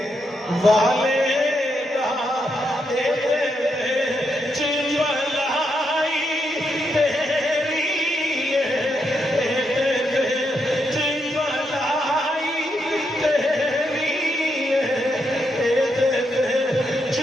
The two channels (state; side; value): normal; both; correlation 0.81